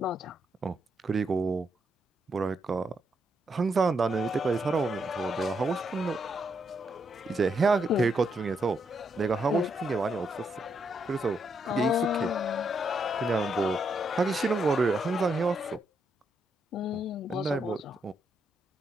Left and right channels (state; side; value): normal; both; correlation 0.78